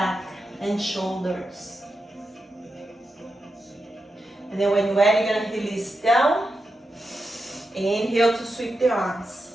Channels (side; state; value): both; normal; correlation 0.88